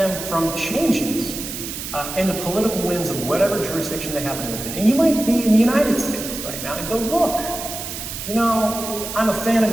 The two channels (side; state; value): right; noise; hiss, 7 dB below the sound